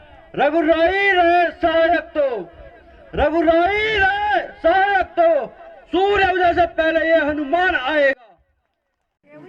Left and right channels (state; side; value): identical; both; correlation 1.00